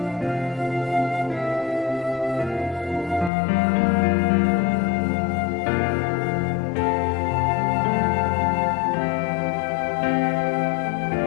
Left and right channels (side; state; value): right; drops out; at 3.3 s